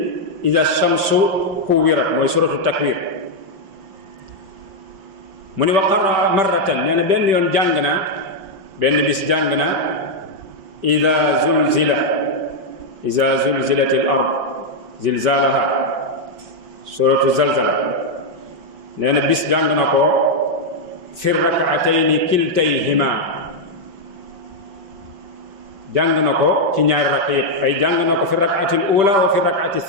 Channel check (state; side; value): late; left; 5.2 ms